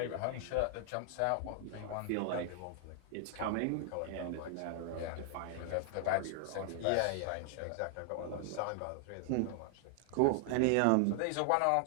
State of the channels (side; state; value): both; different; correlation 0.00